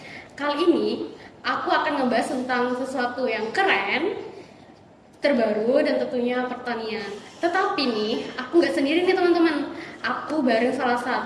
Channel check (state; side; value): identical; both; correlation 1.00